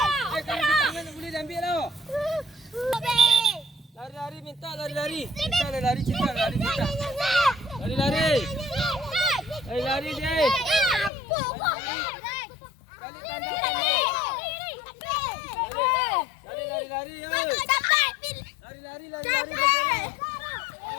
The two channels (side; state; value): right; drops out; at 11.1 s